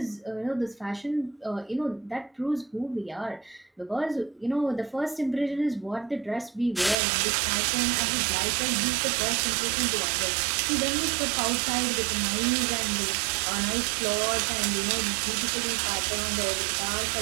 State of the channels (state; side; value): drops out; left; at 7.0 s